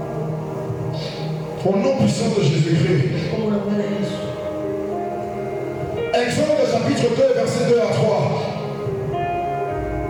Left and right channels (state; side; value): identical; both; correlation 1.00